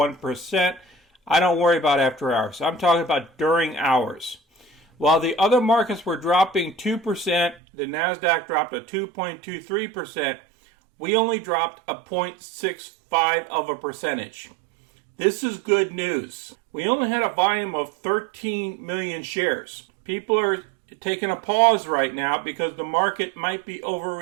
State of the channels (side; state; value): left; drops out; at 7.6 s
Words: I don't worry about after hours. I'm talking about during hours. While the other markets were dropping 2%, the NASDAQ dropped a 2.23%. We only dropped a 0.65 of a percentage. This is good news. We only had a volume of 13 million shares. People are taking a pause right now because the market might be